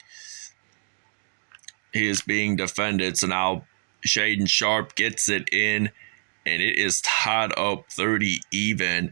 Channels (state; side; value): silent; left; digital silence